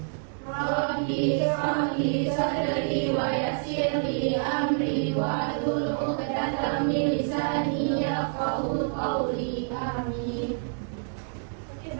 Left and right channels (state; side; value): silent; left; digital silence